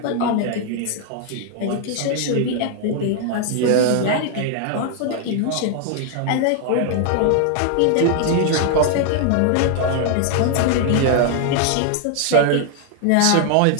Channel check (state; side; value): different; both; correlation 0.00